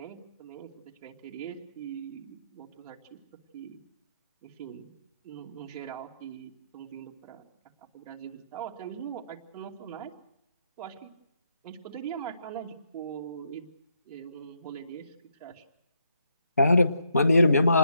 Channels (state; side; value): inverted; both; correlation -0.77